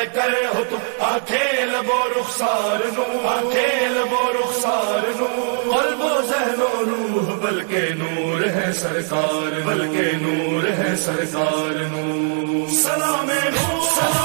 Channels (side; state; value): left; silent; 65 dB below the other